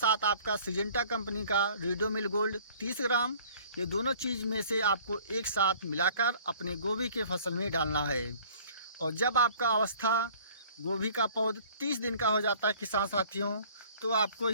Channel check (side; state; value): both; inverted; correlation -0.52